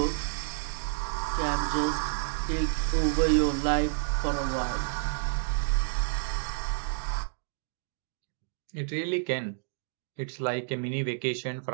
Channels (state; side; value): silent; left; digital silence